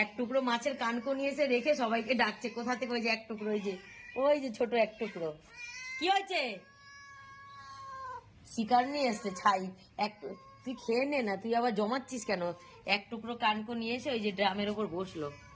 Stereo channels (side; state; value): both; identical; correlation 1.00